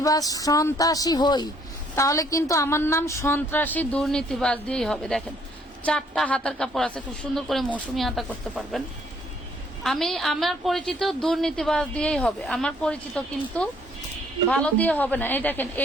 সন্ত্রাসী হই, তাহলে কিন্তু আমার নাম সন্ত্রাসী দুর্নীতিবাজ দিয়েই হবে। দেখেন, 4টা হাতার কাপড় আছে, খুব সুন্দর করে মৌসুমি হাতা করতে পারবেন। আমার পরিচিত দুর্নীতিবাজ দিয়েই হবে, আমার পরিচিত কিন্তু ভালো দিয়ে হবে না। এই দেখেন,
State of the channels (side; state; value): both; normal; correlation 0.64